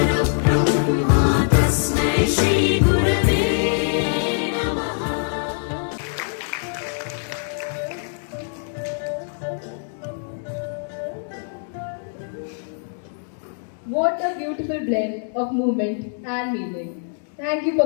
What a beautiful blend of movement and meaning. Thank you,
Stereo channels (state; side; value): silent; right; digital silence